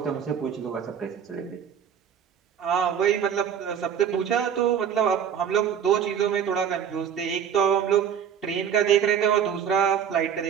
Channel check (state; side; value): quieter; left; 8.4 dB